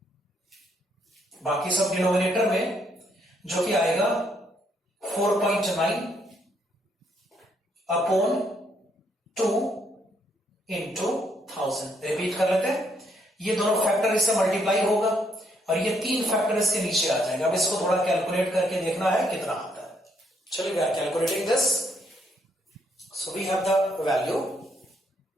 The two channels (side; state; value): both; normal; correlation 0.72